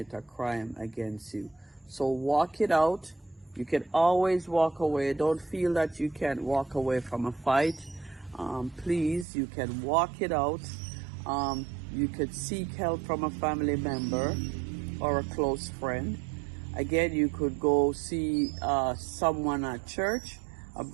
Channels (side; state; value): left; drops out; at 9.2 s